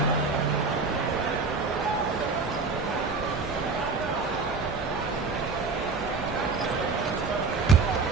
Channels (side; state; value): left; quieter; 4.4 dB